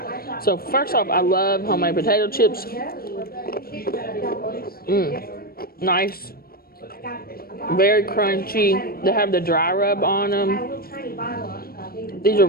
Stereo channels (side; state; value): right; late; 0.44 ms